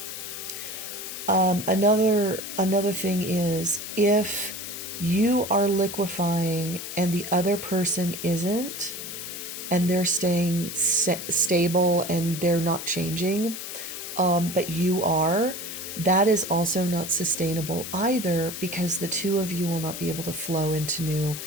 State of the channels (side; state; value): left; noise; hiss, 8 dB below the sound